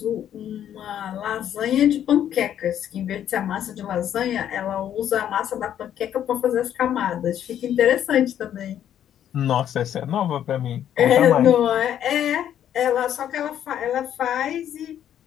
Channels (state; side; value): quieter; right; 10.3 dB